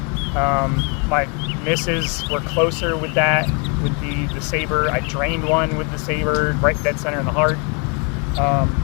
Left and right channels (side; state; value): right; quieter; 35.3 dB